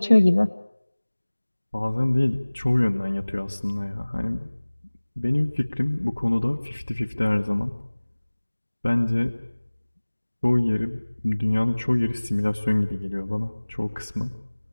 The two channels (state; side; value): inverted; both; correlation -1.00